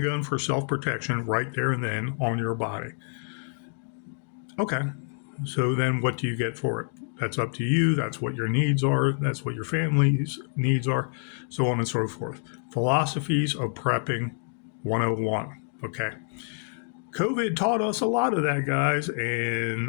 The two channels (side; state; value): right; silent; 60 dB below the other